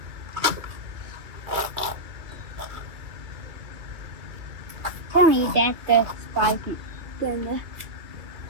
Tell me that the spiky gonna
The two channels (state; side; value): late; left; 2.3 ms